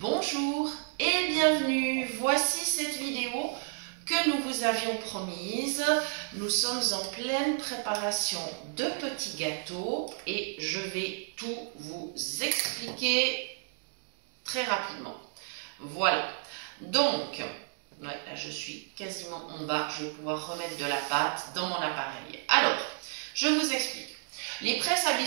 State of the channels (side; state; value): left; silent; 57 dB below the other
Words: et bienvenue. Voici cette vidéo que nous vous avions promise. Nous sommes en pleine préparation de petits gâteaux et je vais tout vous expliquer très rapidement. Voilà. Donc, là je suis quasiment en bas. Je vais pouvoir remettre de la pâte dans mon appareil. Alors, je vous explique. Les presses à